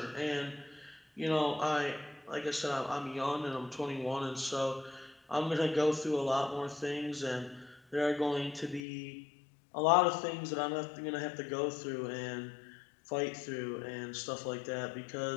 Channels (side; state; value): right; drops out; at 8.8 s